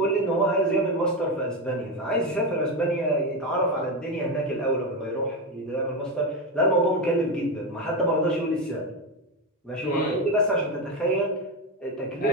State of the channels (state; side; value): normal; both; correlation 0.13